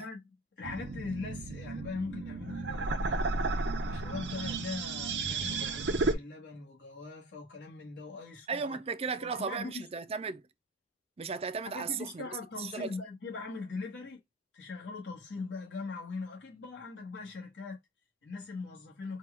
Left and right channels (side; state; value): both; normal; correlation 0.34